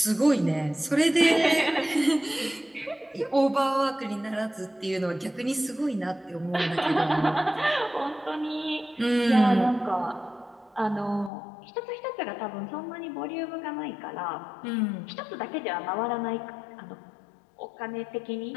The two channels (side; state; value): right; drops out; at 11.3 s